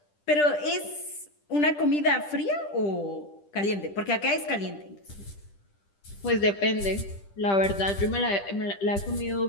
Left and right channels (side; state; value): right; late; 10 ms